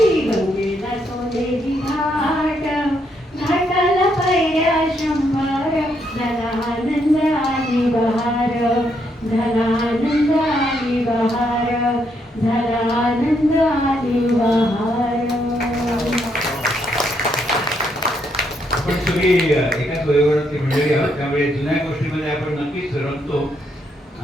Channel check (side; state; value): both; normal; correlation 0.75